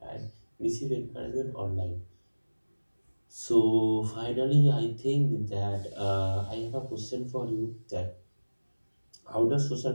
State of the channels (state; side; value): inverted; both; correlation -1.00